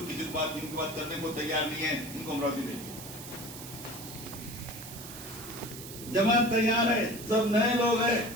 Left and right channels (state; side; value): noise; right; hiss, 12 dB below the sound